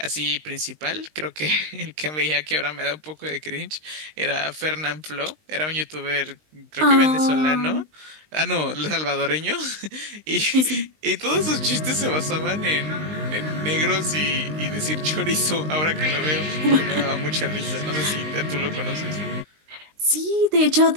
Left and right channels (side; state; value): left; late; 19 ms